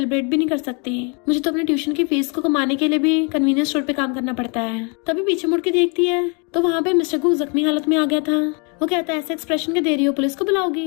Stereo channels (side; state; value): right; quieter; 34.3 dB